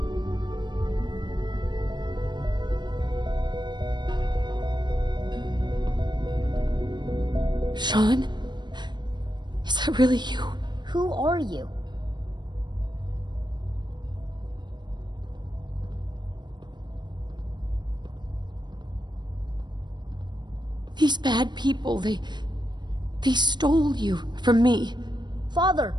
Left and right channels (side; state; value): left; late; 0.21 ms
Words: Sean? Is that really you? Who are you? These bad people, they stole you from me. Father,